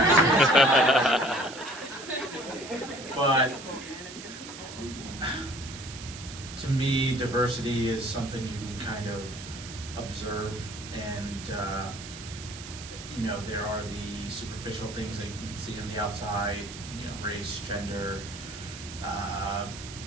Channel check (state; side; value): noise; right; hiss, 12 dB below the sound